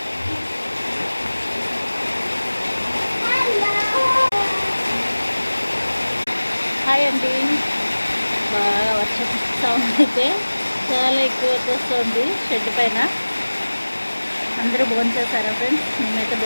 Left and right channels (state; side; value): inverted; both; correlation -1.00